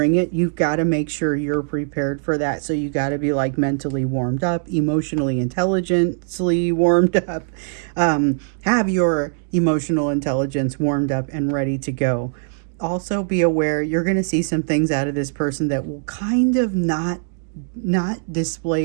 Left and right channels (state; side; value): silent; left; digital silence